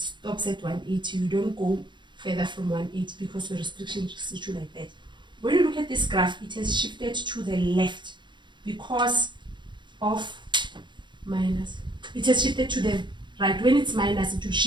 at 180. You don't go further from 180 because the restriction restricts you like that. When you look at this graph, it has shifted to the left because of minus. It has shifted to the right. When it's minus, it will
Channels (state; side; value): late; left; 0.22 ms